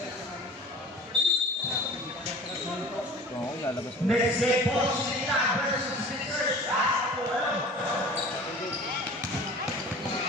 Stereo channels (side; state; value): both; normal; correlation 0.41